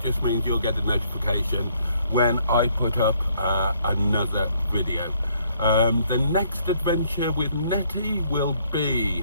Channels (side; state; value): both; inverted; correlation -0.67